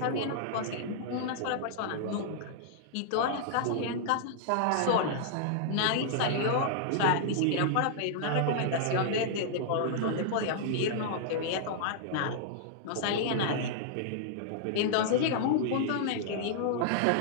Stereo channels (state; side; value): different; both; correlation -0.01